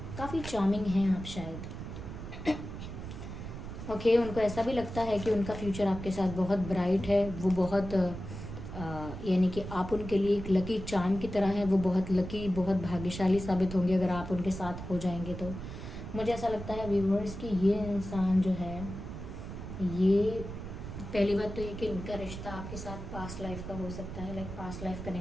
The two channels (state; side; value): noise; right; rumble, 9 dB below the sound